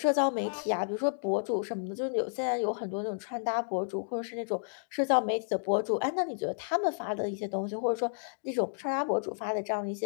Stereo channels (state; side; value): silent; right; digital silence